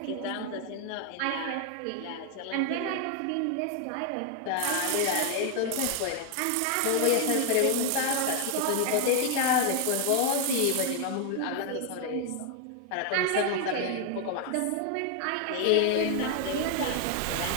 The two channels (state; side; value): different; both; correlation 0.00